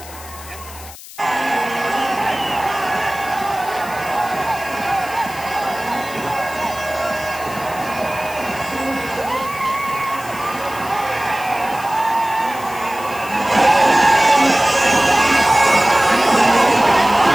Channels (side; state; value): left; noise; hiss, 16 dB below the sound